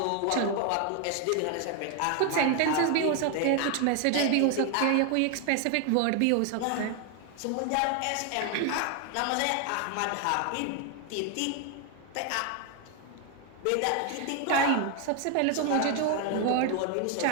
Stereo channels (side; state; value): both; different; correlation 0.01